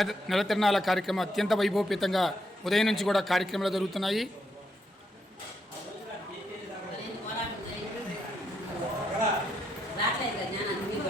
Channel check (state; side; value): normal; both; correlation 0.78